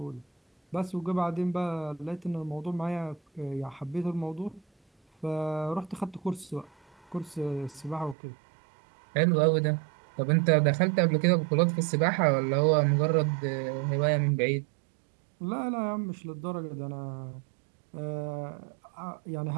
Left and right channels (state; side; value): drops out; left; at 8.2 s